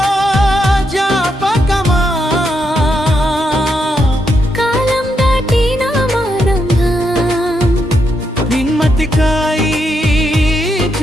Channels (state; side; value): normal; both; correlation 0.81